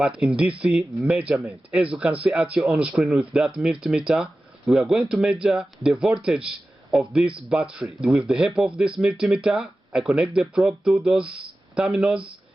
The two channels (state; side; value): normal; both; correlation 0.95